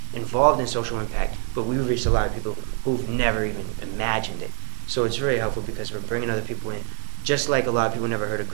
involved in social impact, but we reach a lot of people who've never even imagined it. So it's really helpful because we're bringing other people in. Just like a lot of people never heard of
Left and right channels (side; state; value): left; silent; 62 dB below the other